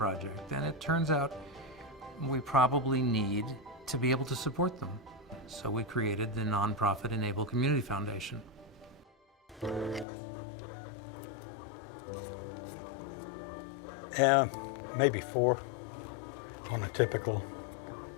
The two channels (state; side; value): drops out; right; at 10.1 s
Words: And it turns out we probably need to be able to support them. So we created the nonprofit e-NABLE Community Foundation. Maybe 4 on a typical